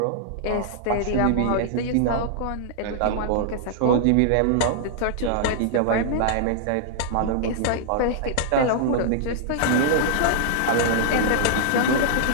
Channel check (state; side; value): different; both; correlation -0.01